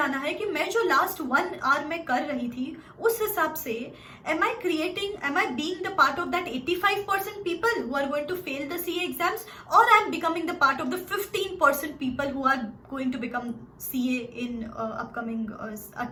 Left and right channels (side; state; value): both; identical; correlation 1.00